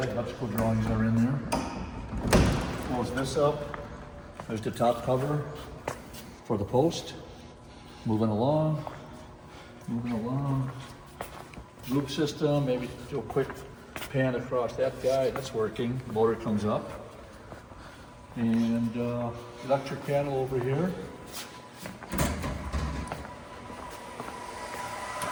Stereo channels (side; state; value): both; identical; correlation 1.00